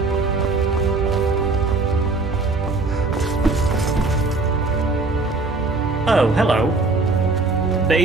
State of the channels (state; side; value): quieter; left; 3.6 dB